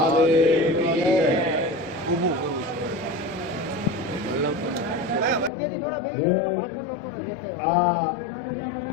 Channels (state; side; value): drops out; right; at 5.5 s